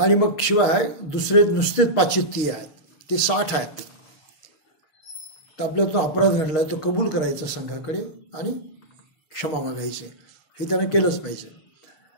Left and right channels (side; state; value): right; late; 6.4 ms